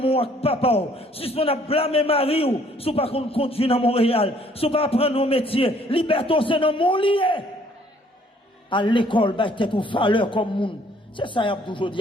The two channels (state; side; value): normal; both; correlation 0.61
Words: ak papa suspend à blâmer mari ou sous pas qu'on conduit dans Montréal sous pas apprendre nos métiers liberté c'est dans mon lié à l'école, bah, t'es une valeur comme monde. C'est ça, il y a toujours dit,